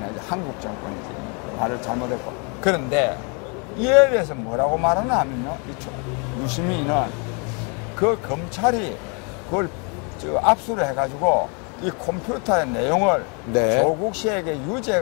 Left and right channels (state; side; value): quieter; right; 35.1 dB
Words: 아니지 한국정권이지. 말을 잘못했고. 그런데 이에 대해서 뭐라고 말하나 하면요. 유시민은 그 검찰이 그걸 압수를 해가지고 이 컴퓨터의 내용을 조국 씨에게